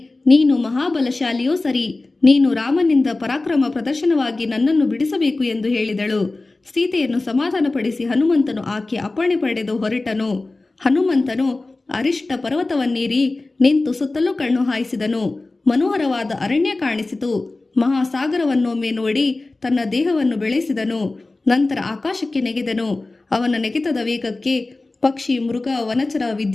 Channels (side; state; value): right; quieter; 3.2 dB